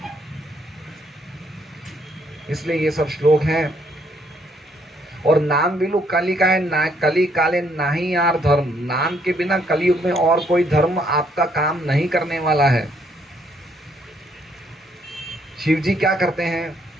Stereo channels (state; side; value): normal; both; correlation 0.69